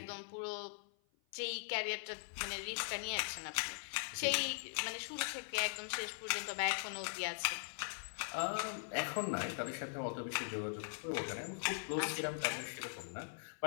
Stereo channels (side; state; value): right; silent; 50 dB below the other